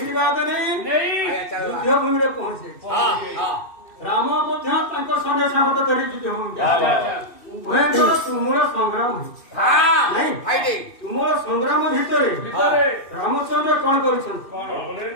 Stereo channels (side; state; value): right; late; 2.7 ms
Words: ନେଇ ଯୁଦ୍ଧ ଭୂମିରେ ପହଞ୍ଚେ। ରାମ ମଧ୍ୟ ତାଙ୍କ ସଙ୍ଗେ ସାହସ ଧରି ଯୁଦ୍ଧ ଭୂମିକୁ ଉଭୟଙ୍କର ତୁମର ସଂଗ୍ରାମ ହେଇଛି। ତୁମର ସଂଗ୍ରାମ ଭିତରେ ରାମଚନ୍ଦ୍ର କଣ କରୁଛନ୍ତି?